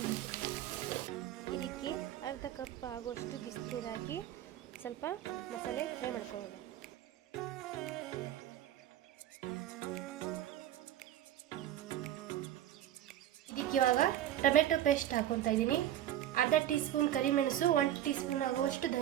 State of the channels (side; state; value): left; quieter; 12.1 dB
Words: ಇದಕ್ಕೆ ಅರ್ಧ ಕಪ್ ಆಗುವಷ್ಟು ಬಿಸಿನೀರು ಹಾಕಿ ಸ್ವಲ್ಪ ಮಸಾಲೆ ಫ್ರೈ ಮಾಡ್ಕೊಳ್ಳೋಣ. ಇದಕ್ಕೆ ಇವಾಗ ಟೊಮೆಟೊ ಪೇಸ್ಟ್ ಹಾಕೊತಾ ಇದ್ದೀನಿ, ಅರ್ಧ ಟೀ ಸ್ಪೂನ್ ಕರಿಮೆಣಸು, 1 ಟೀ ಸ್ಪೂನ್ ಆಗುವಷ್ಟು